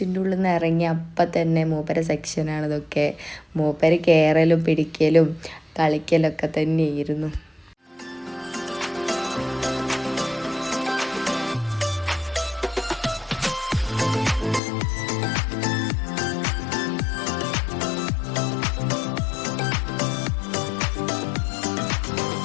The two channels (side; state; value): right; drops out; at 14.6 s